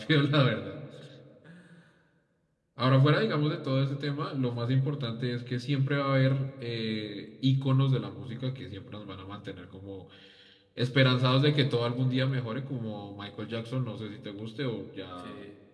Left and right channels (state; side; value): identical; both; correlation 1.00